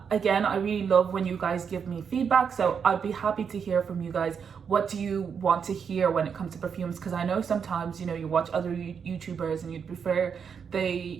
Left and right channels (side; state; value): left; quieter; 6.7 dB